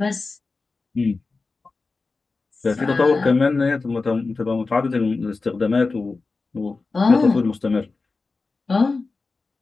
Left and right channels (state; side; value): quieter; right; 3.9 dB